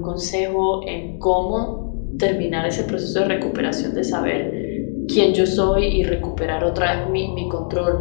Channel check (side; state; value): right; silent; digital silence